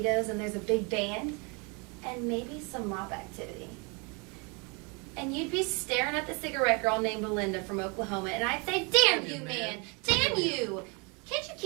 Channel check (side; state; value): left; quieter; 31.8 dB